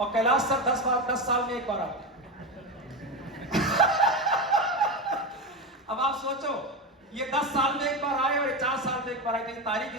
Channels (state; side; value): normal; both; correlation 0.17